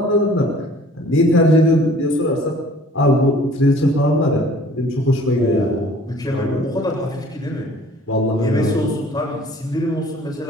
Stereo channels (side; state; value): both; normal; correlation 0.52